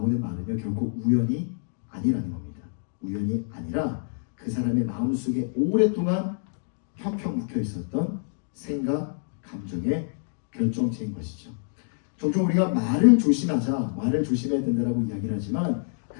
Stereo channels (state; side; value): silent; right; digital silence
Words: 말은요, 결국 우연이 아니라는 겁니다. 우연이 아니라 그 사람의 마음속에 오랫동안 펴펴 묵혀 있었던 생각, 감정의 결정체인 것이죠. 종종 우리가 말을 조심하자, 말을 조심해야 된다고 이야기를 하지만